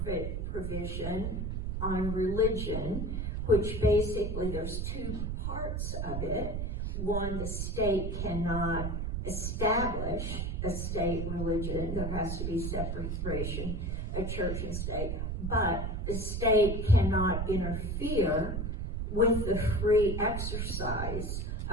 provision on religion, which basically there's two parts of it. One, the state cannot establish a state religion. There has to be separation of church and state. But the state cannot interfere with the free exercise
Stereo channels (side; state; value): right; noise; rumble, 2 dB below the sound